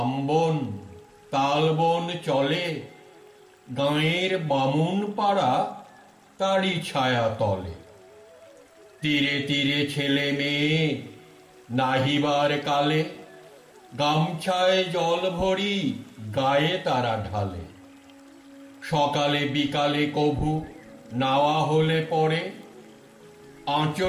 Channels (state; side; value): identical; both; correlation 1.00